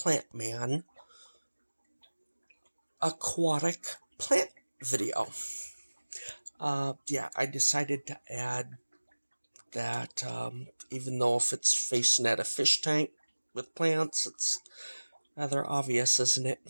Man aquatic plant video. I decided to add that, even though if it's facing at a fish tank with plants, it's rather obvious, isn't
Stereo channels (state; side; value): inverted; both; correlation -1.00